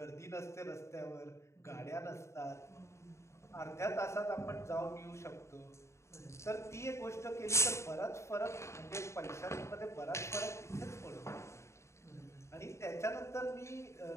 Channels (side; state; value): right; late; 0.14 ms